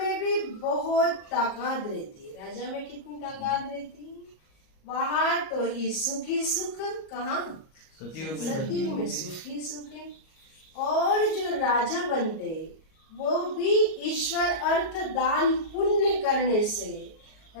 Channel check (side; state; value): right; late; 38 ms